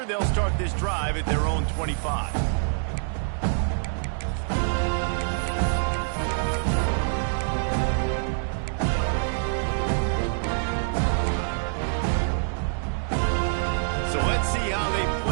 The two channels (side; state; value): left; silent; 61 dB below the other